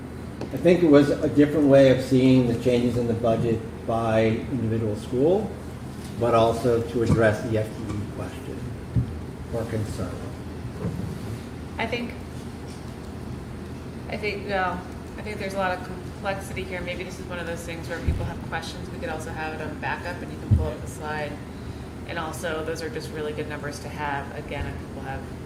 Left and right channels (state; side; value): identical; both; correlation 1.00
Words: I think it was a different way of seeing the changes in the budget by individual school, but also to address the FTE question or concern. I think there's a lot of complexity here. Maybe this is one of those things where people have questions. We could also have it on backup and you can pull up the slide. And also, those are just really good numbers to have, again, if people have